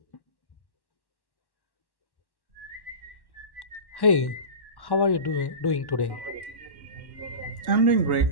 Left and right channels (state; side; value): late; right; 1.1 ms